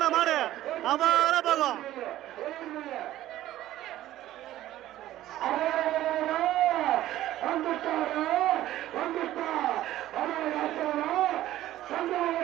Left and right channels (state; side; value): quieter; left; 14.2 dB